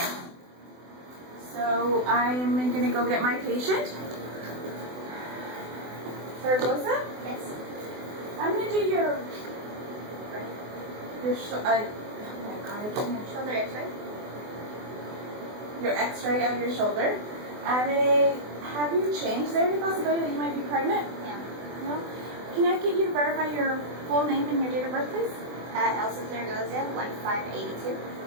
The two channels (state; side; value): late; left; 24 ms